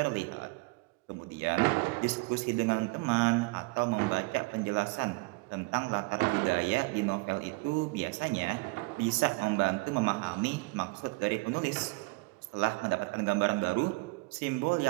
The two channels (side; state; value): left; quieter; 26.6 dB